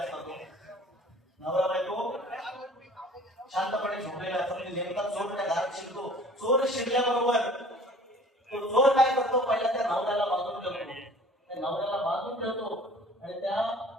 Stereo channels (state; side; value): normal; both; correlation 0.49